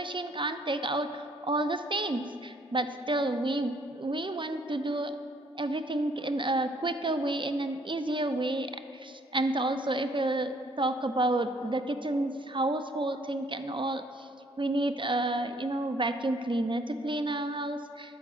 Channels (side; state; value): both; normal; correlation 0.63